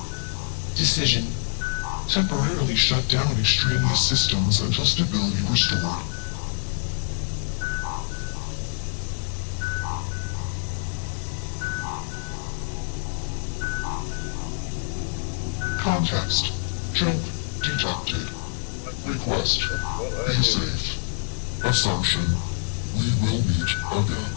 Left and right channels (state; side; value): silent; right; 61 dB below the other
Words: Decision: temporarily shut down extraneous systems until stability restored. Context: jump detected. Request: be safe. Assumption: we will meet again.